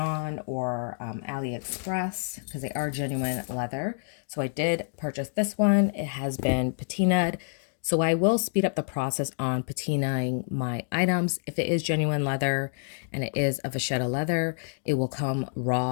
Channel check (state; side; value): silent; right; digital silence